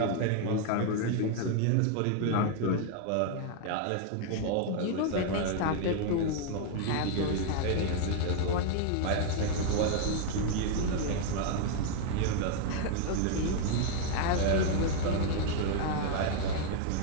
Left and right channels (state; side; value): different; both; correlation 0.00